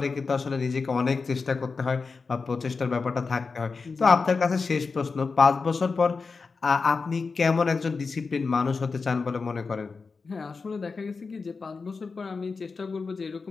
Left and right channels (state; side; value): quieter; right; 4.6 dB